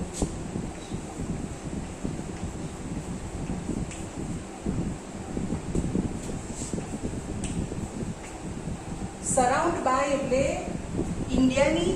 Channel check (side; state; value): both; identical; correlation 1.00